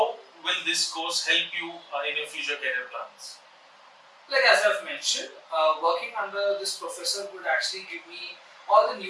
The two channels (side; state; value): both; identical; correlation 1.00